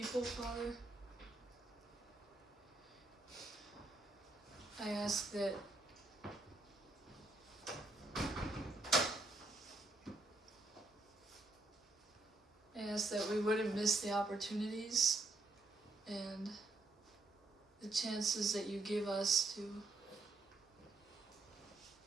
Father. I ask that we wouldn't miss the opportunities and the chances that you give us to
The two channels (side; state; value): left; quieter; 3.1 dB